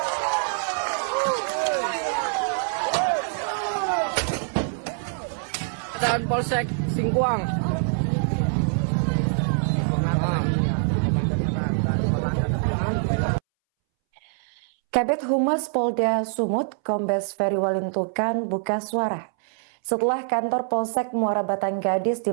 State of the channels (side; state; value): left; silent; 62 dB below the other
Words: Dan Polsek Singkuang. Kabid Humas Polda Sumut, Kombes Ferry Walintukan buka suara setelah kantor Polsek Muara Batang Gadis di